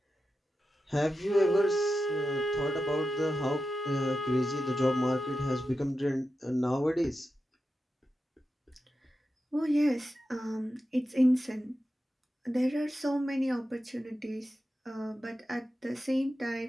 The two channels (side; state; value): both; normal; correlation 0.90